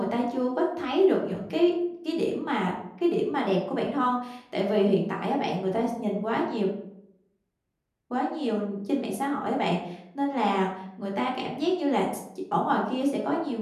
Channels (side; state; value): both; identical; correlation 1.00